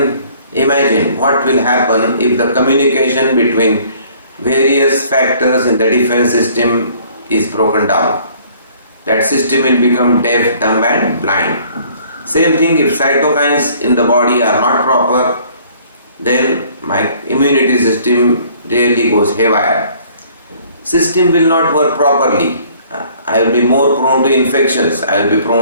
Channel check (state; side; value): inverted; both; correlation -0.57